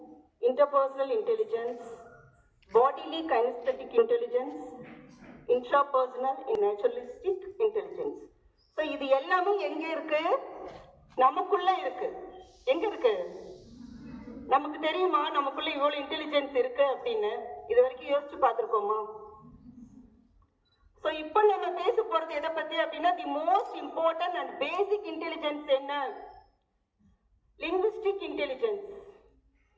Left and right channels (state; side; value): identical; both; correlation 1.00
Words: interpersonal intelligence, bodily kinesthetic intelligence, intrapersonal and naturalistic intelligence. So இது எல்லாமே எங்க இருக்கு? நமக்குள்ள இருக்கு. எங்க இருக்கு? நமக்கு தெரியுமா நமக்குள்ள இவ்வளவு இன்டெலிஜென்ஸ் இருக்கு அப்படின்னு? இது வரைக்கும் யோசிச்சு பார்த்திருக்கோமா? சோ இப்போ நம்ம பேச போறது எதை பத்தி அப்படின்னா the most important and basic intelligence என்ன? Linguistic intelligence.